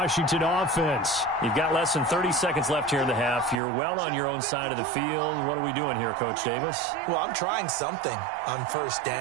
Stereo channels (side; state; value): left; drops out; at 3.6 s